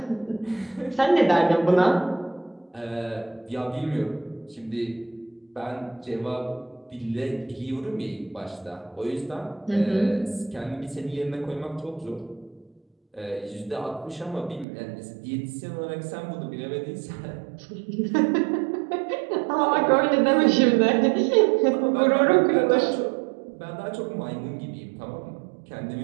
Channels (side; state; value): left; drops out; at 14.7 s